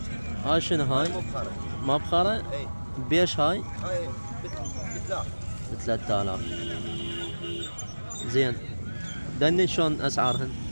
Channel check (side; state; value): both; inverted; correlation -1.00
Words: هاي شنو هاي؟ مبخرة. مبخرة؟ اي بيش هاي؟ هاي بثلاث. ب3,000. زين دني شلون اسعارهن؟